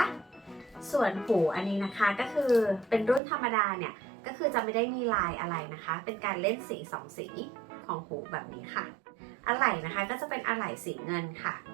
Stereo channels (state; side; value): drops out; left; at 3.2 s